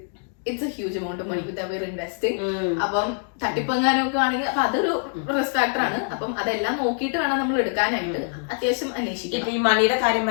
It's a huge amount of money with അവർ ഇൻവെസ്റ്റിംഗ്. അപ്പം തട്ടിപ്പങ്ങാനൊക്കെ ആണെങ്കിൽ അപ്പൊ അതൊരു റിസ്ക് ഫാക്ടർ ആണ്. അപ്പം അതെല്ലാം നോക്കിയിട്ട് വേണം നമ്മൾ എടുക്കാനായിട്ട് അത്യാവശ്യം അന്വേഷിക്കും. ഇപ്പൊ ഈ മണിയുടെ കാര്യം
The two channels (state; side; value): silent; right; 59 dB below the other